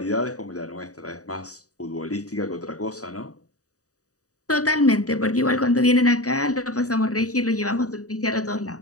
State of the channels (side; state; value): right; late; 0.66 ms